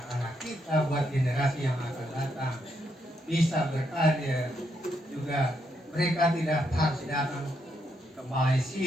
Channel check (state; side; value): normal; both; correlation 0.78